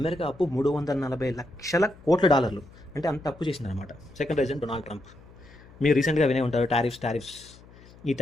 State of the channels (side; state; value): left; noise; hum, 23 dB below the sound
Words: అప్పు $340 కోట్ల, అంటే అంత అప్పు చేసిందనమాట. Second reason Donald Trump. మీరు రీసెంట్గా వినే ఉంటారు టారిఫ్స్. ఈ